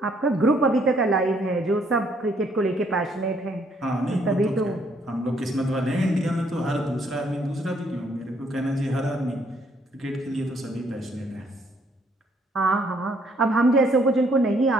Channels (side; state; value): both; normal; correlation 0.68